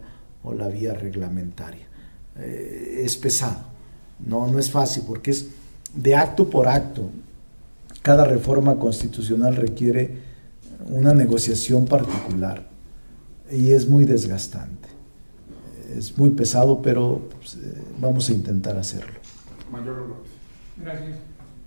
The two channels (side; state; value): both; inverted; correlation -1.00